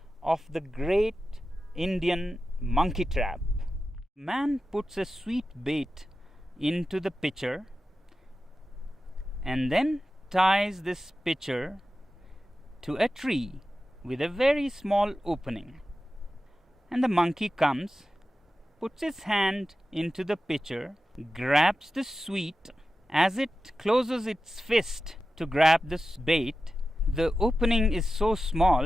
of the great Indian monkey trap. Man puts a sweet bait into the pitcher and then ties this pitcher to a tree with a very small opening. And the monkey comes, puts his hand into the pitcher, grabs the sweet. As it closes its fist to grab this bait, the opening is so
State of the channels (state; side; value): normal; both; correlation 0.93